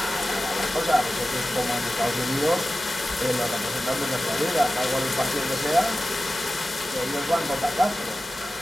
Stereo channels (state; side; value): normal; both; correlation 0.94